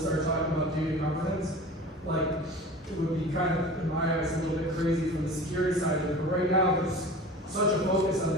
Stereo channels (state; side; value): normal; both; correlation 0.38